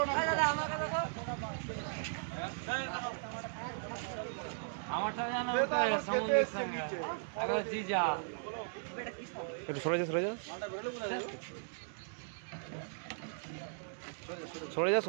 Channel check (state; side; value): silent; left; digital silence